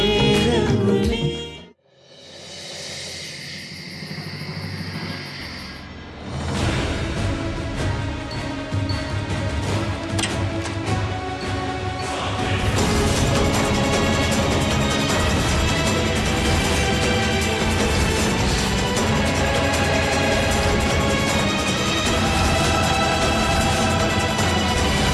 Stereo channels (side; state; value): both; identical; correlation 1.00